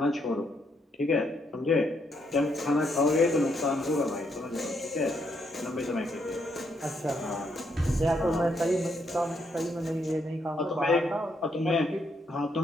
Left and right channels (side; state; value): both; normal; correlation 0.75